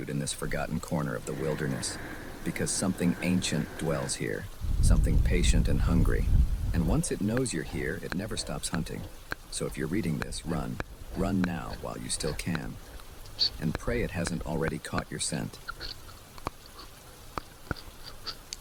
in this forgotten corner of the wilderness, because something ancient dwells here, something patient and hungry. And once it knows you're here, it never stops hunting. So if you're reading this, run. Run now while you still can. And pray it hasn't already caught your scent.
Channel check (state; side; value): identical; both; correlation 1.00